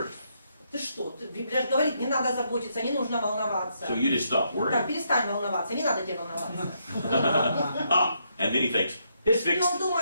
ты что, Библия же говорит, не надо заботиться, не нужно волноваться. So you just stop Так, worrying. перестань волноваться, не надо тебе волноваться. And then he thinks, it's И fixed. он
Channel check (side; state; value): both; inverted; correlation -0.76